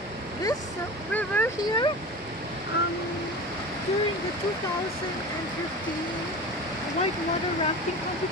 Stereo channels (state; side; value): normal; both; correlation 0.32